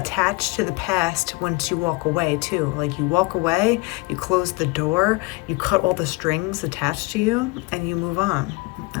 to the past once you walk away too. Like, you walk away, you close the door, you cut all the strings attached to you, and you move on,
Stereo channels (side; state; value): right; quieter; 24.9 dB